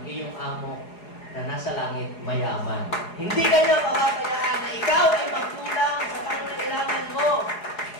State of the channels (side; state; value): right; late; 4.8 ms